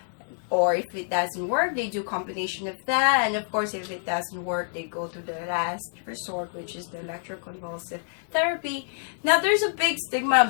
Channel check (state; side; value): silent; right; digital silence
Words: Or if it doesn't work, they do combination of that. And of course, if it doesn't work, they go to the last resort, which is the electroconvulsive therapy. Now, there's a big stigma